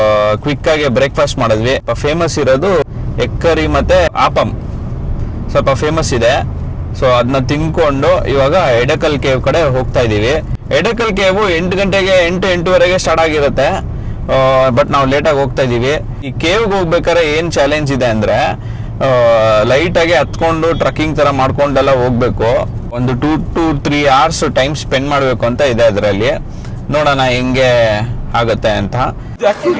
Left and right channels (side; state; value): both; identical; correlation 1.00